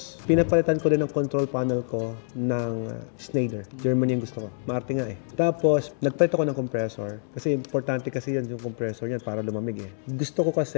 pinapalitan ko din ang control panel ko ng Schneider. Germany yung gusto ko. Maarte nga eh. Tapos, nagpalit ako ng compressor. Kasi importante kasi yan yung compressor niyan para lumamig eh. Gusto ko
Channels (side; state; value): right; silent; 61 dB below the other